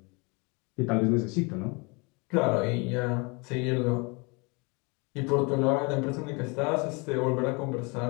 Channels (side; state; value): right; quieter; 29.5 dB